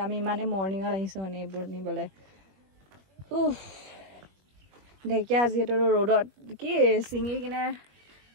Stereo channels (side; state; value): left; late; 21 ms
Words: আমি ইমানে মৰ্নিঙত আহিছো মানে এইবোৰ নিবলে ঢেকীয়া যিহেতু ৰ'দত কি চিঙি কিনে